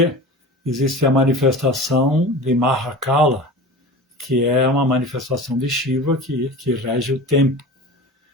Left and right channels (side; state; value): both; normal; correlation 0.34